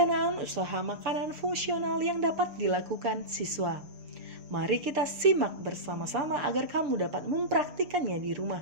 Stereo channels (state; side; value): late; left; 7.0 ms